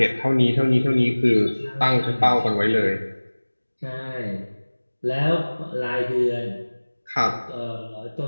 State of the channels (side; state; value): both; inverted; correlation -1.00